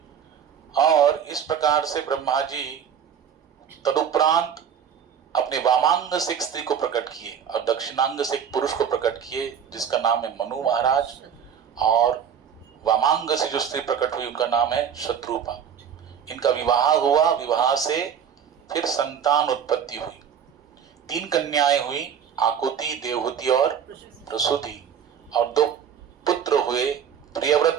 और इस प्रकार से ब्रह्मा जी तदुपरांत अपने वामांग से एक स्त्री को प्रकट किए और दक्षिणांग से एक पुरुष को प्रकट किए जिसका नाम है मनु महाराज, और वामांग से जो स्त्री प्रकट हुई उनका नाम है शत्रुपा। इनका विवाह हुआ, विवाह से फिर संतान उत्पत्ति हुई। 3 कन्याएं हुई, आकुति, देवहूति और प्रसूति, और 2 पुत्र हुए,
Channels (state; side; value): quieter; left; 8.0 dB